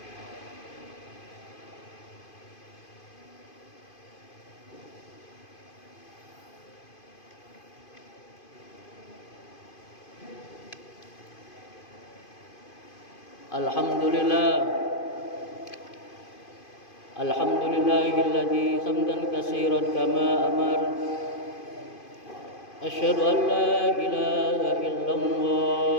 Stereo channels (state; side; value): late; right; 2.5 ms